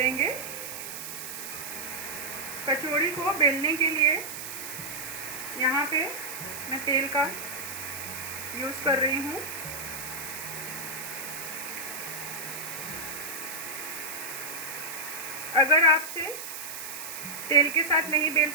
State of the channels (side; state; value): right; noise; hiss, 8 dB below the sound